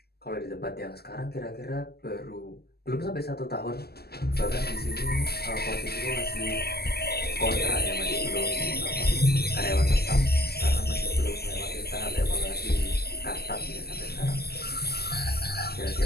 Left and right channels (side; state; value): right; late; 0.46 ms